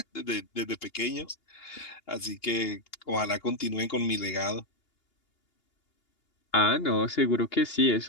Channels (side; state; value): right; late; 2.8 ms